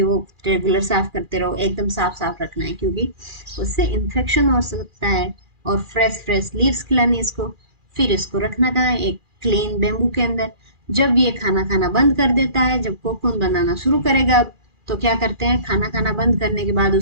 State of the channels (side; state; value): left; late; 2.4 ms